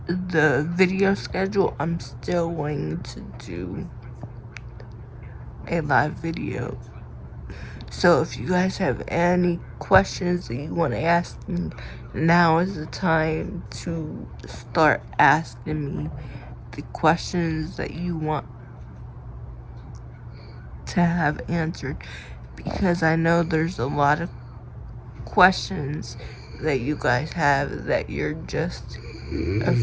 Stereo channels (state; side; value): identical; both; correlation 1.00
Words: video schedule, I'm still going to do a live video. So if you guys have any questions that you want to ask me, now is the time to start asking me the questions that you want to have answered, because I know there's a lot of questions that you guys have that you're just